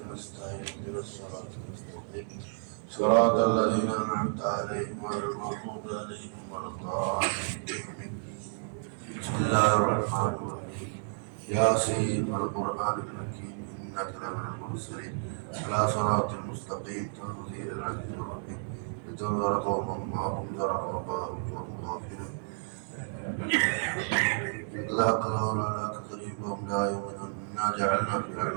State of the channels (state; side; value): silent; left; digital silence